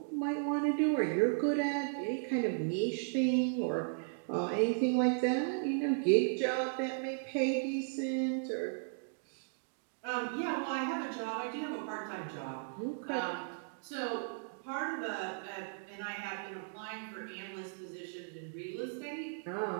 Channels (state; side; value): silent; left; digital silence